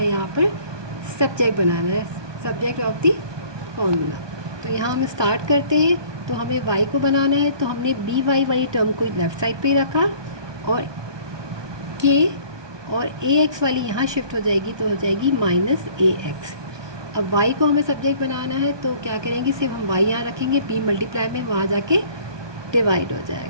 यहाँ पर सब्जेक्ट बनाना है, सब्जेक्ट ऑफ द फॉर्मूला। तो यहाँ हम स्टार्ट करते हैं। तो हमें y को बनाना है, तो हमने बी वाई वाली टर्म को लेफ़्ट साइड पे रखा और k और ax वाली यहाँ शिफ्ट हो जाएगी, तो हो जाएगी माइनस ax। अब y को हमें सब्जेक्ट बनाना है, तो क्या करेंगे, सिर्फ हम y यहाँ रखेंगे, b मल्टीप्लाई में वहाँ जाके डिवाइड हो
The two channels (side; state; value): left; late; 1.2 ms